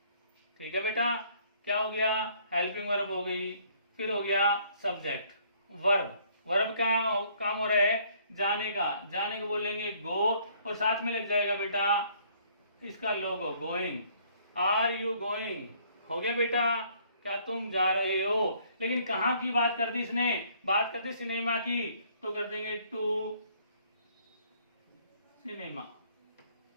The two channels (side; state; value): both; inverted; correlation -0.62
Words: ठीक है बेटा, क्या हो गया, हेल्पिंग वर्ब हो गई। फिर हो गया सब्जेक्ट, वर्ब। वर्ब का काम हो रहा है जाने का, जाने को बोलेंगे गो, और साथ में लग जाएगा बेटा इसका लोगो गोइंग, आर यू गोइंग, हो गया बेटा, क्या तुम जा रहे हो। लेकिन कहाँ की बात कर दी इसने, बात कर दी सिनेमा की, तो कर देंगे टू सिनेमा।